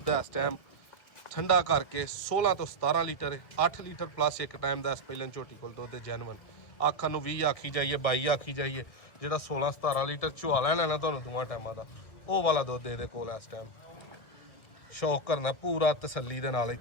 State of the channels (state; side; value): late; right; 2.0 ms